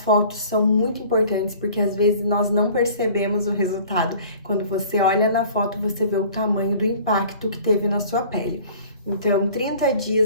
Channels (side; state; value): both; inverted; correlation -0.48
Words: são muito importantes, porque às vezes nós não percebemos o resultado. Quando você olha na foto, você vê o tamanho do impacto que teve na sua pele. Então, 30